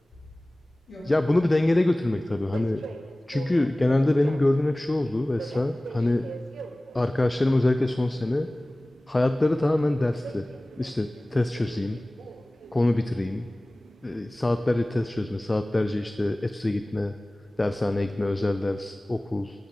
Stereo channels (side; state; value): both; normal; correlation 0.98